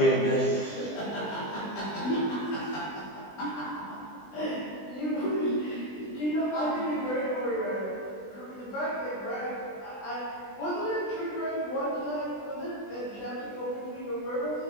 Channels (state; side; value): late; right; 20 ms